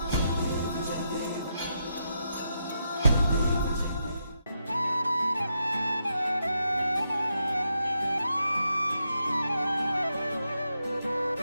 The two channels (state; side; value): inverted; both; correlation -0.82